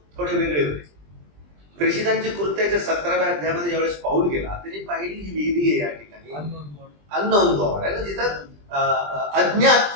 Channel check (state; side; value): late; left; 20 ms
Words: थोडे वेगळे होते. प्रेषितांची कृत्याच्या 17व्या अध्यायामध्ये ज्यावेळेस पाऊल गेला, त्यांनी पाहिली ही वेदी आहे या ठिकाणी, अननोन गॉड आहे ना, जिथं अज्ञात